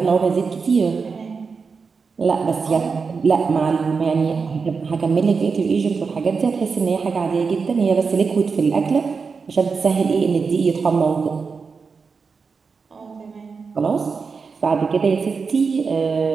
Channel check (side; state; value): left; quieter; 5.1 dB